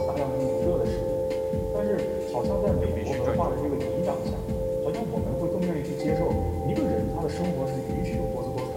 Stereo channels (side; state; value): both; identical; correlation 1.00